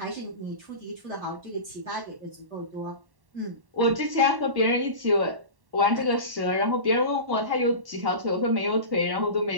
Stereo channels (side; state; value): left; late; 1.1 ms